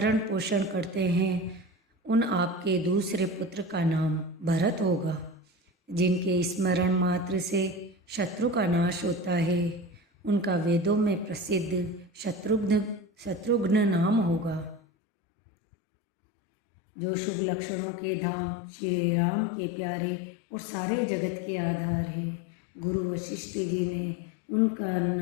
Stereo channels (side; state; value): right; drops out; at 14.8 s